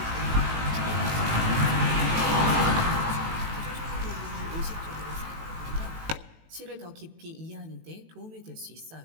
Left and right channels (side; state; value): left; late; 18 ms